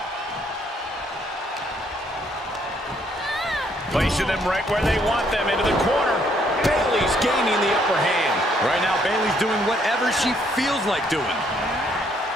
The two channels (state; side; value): normal; both; correlation 0.69